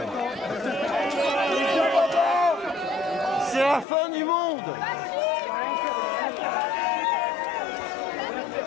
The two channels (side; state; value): right; drops out; at 3.9 s